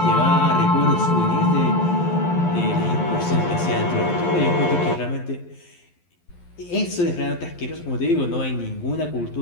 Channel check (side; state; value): right; late; 11 ms